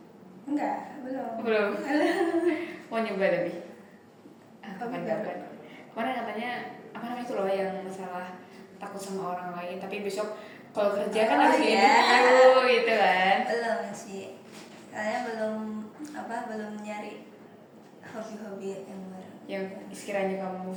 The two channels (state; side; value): identical; both; correlation 1.00